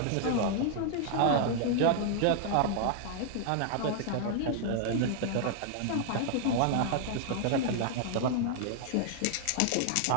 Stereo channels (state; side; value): different; both; correlation 0.00